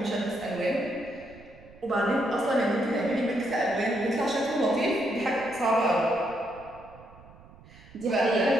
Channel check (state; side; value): noise; right; rumble, 22 dB below the sound